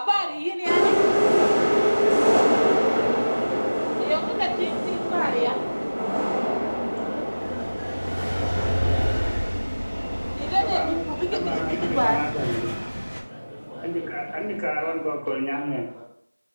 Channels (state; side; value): inverted; both; correlation -1.00